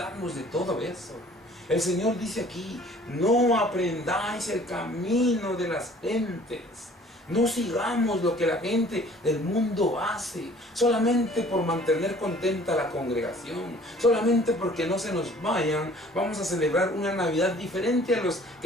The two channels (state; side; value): normal; both; correlation 0.52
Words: de todo eso. El Señor dice aquí: no aprendáis el camino de las gentes. No sigamos lo que la gente del mundo hace, solamente por mantener contenta la congregación, solamente porque no se nos vayan. Vamos a celebrar una Navidad diferente a los